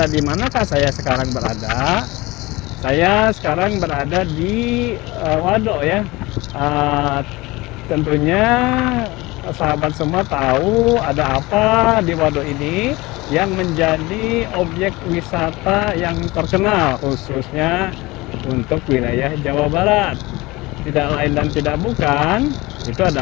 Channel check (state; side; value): quieter; right; 21.5 dB